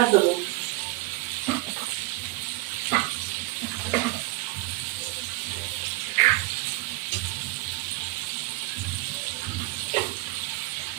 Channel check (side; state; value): left; quieter; 22.0 dB